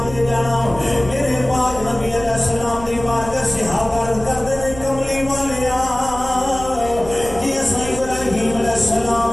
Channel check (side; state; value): right; noise; rumble, 13 dB below the sound